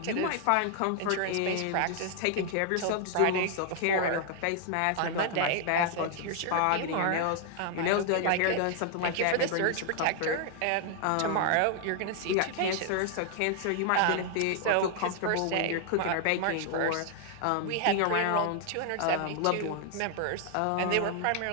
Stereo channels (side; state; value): both; different; correlation 0.00